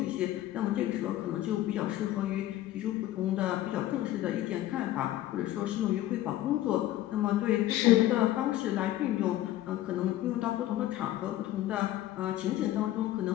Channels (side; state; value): right; quieter; 14.3 dB